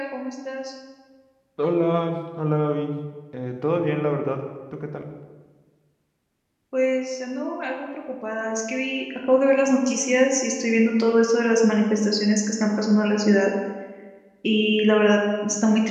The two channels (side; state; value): both; identical; correlation 1.00